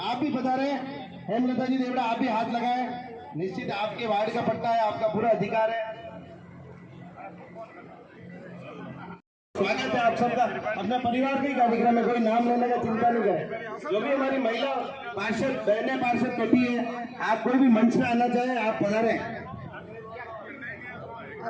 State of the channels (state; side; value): identical; both; correlation 1.00